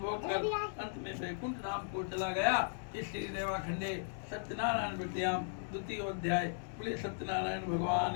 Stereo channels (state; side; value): silent; right; digital silence